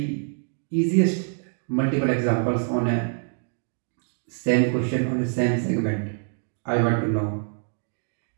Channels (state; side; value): silent; left; 61 dB below the other